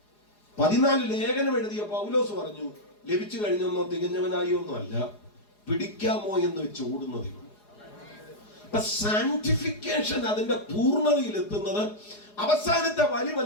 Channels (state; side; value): late; right; 4.8 ms